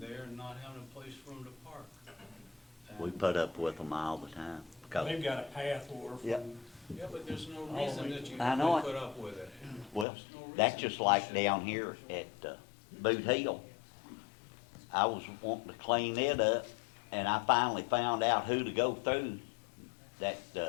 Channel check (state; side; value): drops out; right; at 10.1 s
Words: and not having a place for them to park. We And- put up with them all the time. 'Cause- They've got a path or from. Yep. Yeah, but there's no reason that you I know have it. to put up with it. Well, There's no that's reason just you like should. down here at Boot Hill. I was wanting to clean it up, and I finally found out who to go through, that